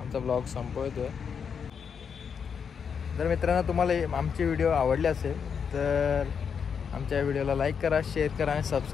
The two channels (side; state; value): right; quieter; 6.7 dB